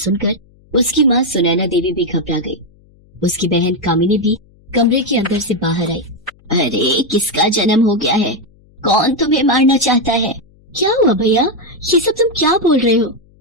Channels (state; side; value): noise; left; hum, 30 dB below the sound